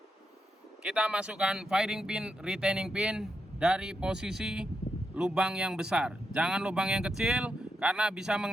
kita masukkan firing pin, retaining pin dari posisi lubang yang besar. Jangan lubang yang kecil karena bisa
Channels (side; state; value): both; normal; correlation 0.84